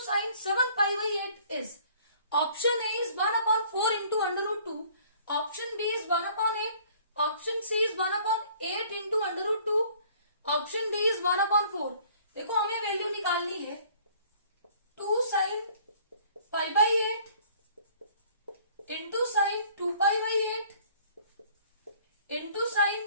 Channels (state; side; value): inverted; both; correlation -0.55